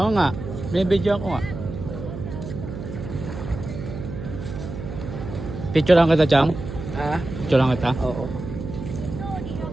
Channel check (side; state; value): right; noise; hum, 8 dB below the sound